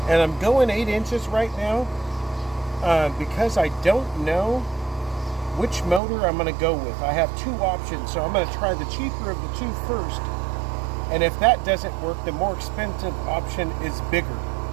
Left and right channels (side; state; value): left; drops out; at 6.0 s